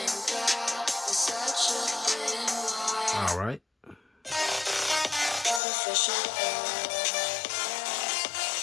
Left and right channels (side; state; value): right; drops out; at 5.6 s